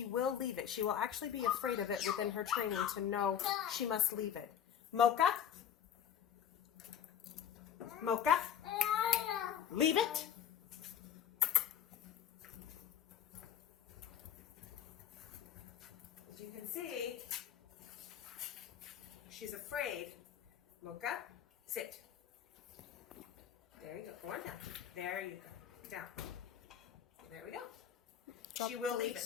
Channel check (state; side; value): quieter; right; 9.4 dB